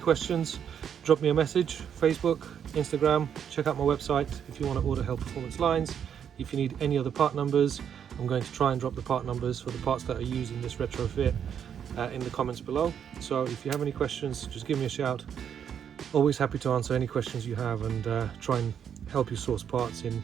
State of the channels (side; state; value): left; quieter; 8.3 dB